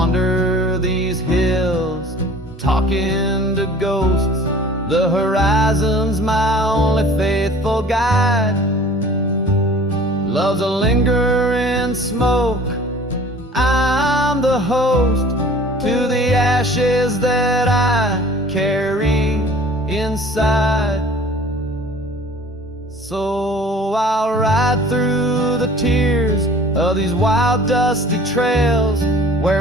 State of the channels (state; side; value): normal; both; correlation 0.47